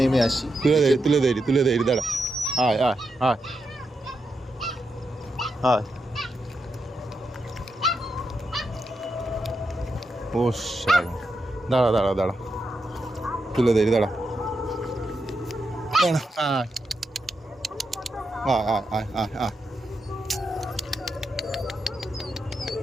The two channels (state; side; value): normal; both; correlation 0.85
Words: আসি। তুলে দেরি দাঁড়া, আয় আয় আয় আয়। ও দাঁড়া দাঁড়া দাঁড়া, তুলে দেরি দাঁড়া দাঁড়া, আয় আয় আয় আয় আয়।